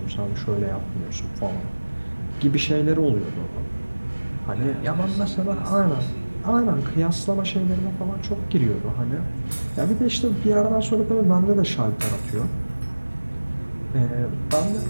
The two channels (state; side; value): inverted; both; correlation -1.00